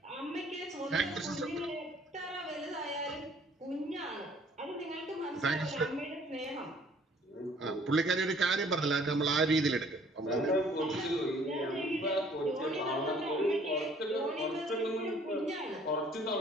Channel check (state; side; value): normal; both; correlation 0.58